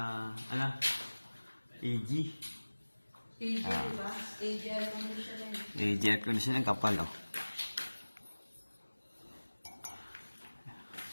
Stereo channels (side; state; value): both; inverted; correlation -1.00